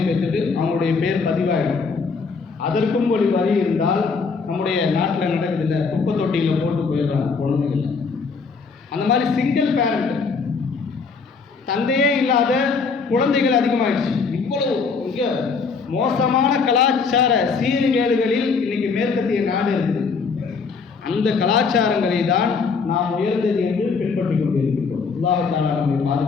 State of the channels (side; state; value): right; quieter; 5.0 dB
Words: பெற்றுட்டு அவங்களுடைய பேர் பதிவாயிடும். அதற்கும் ஒரு வழி இருந்தால் நம்முடைய நாட்டில் நடக்குதில்லை, குப்பை தொட்டியில் போட்டு போயிடுறாங்க குழந்தைகள். அந்த மாதிரி சிங்கிள் பேரண்ட், தந்தையே இல்லாத குழந்தைகள் அதிகமாகிடுச்சு. இவ்வளவு மிக மோசமான கலாச்சார சீர்கேடுகளில் இன்னைக்கு மேற்கத்திய நாடு இருக்குது. அந்த கலாச்சாரங்களை தான் நாம் உயர்ந்தது என்று பின்பற்றி கொண்டிருக்கிறோம். அல்லாஹ் தஆலா நம்மை